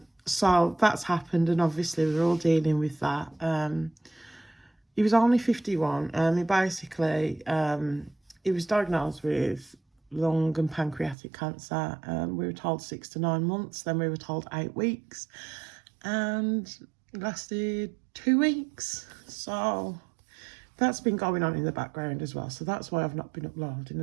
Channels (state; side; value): drops out; left; at 11.2 s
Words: So that's happened, and obviously we're all dealing with that. He was only 51. He basically, he was diagnosed with lung and pancreatic cancer. We were told 6 to 9 months, then we were told 8 weeks, and it lasted 2 weeks. So that's been going on in the background as well, so that's why I've not been uploading